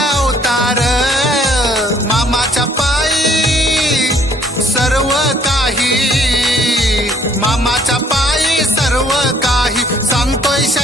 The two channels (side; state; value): both; normal; correlation 0.62